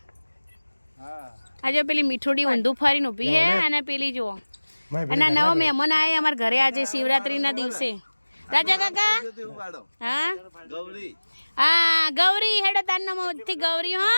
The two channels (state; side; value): inverted; both; correlation -1.00